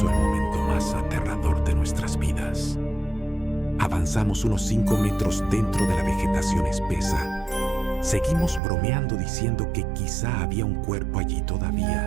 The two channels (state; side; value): drops out; left; at 8.6 s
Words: el momento más aterrador de nuestras vidas. Avanzamos unos 5 metros dentro de la vegetación espesa. Seguimos bromeando diciendo que quizá había un cuerpo allí